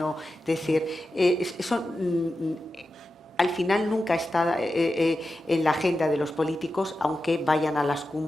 es decir, eso al final nunca está en la agenda de los políticos, aunque vayan a las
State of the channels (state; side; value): normal; both; correlation 0.91